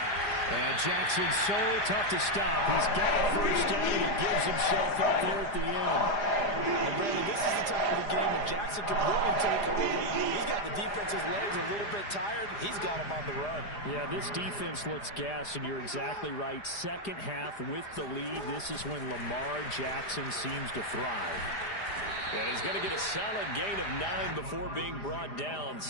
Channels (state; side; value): late; right; 4.9 ms